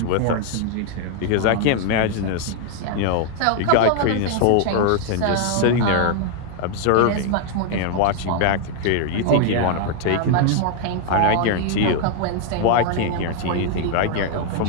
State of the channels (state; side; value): different; both; correlation 0.00